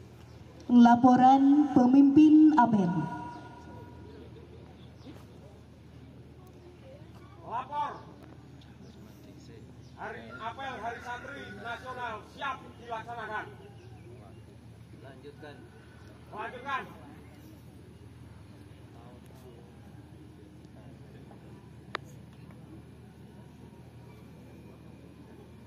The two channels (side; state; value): both; identical; correlation 1.00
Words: Laporan pemimpin apel. Lapor. Hari apel Hari Santri Nasional siap dilaksanakan. Lanjutkan.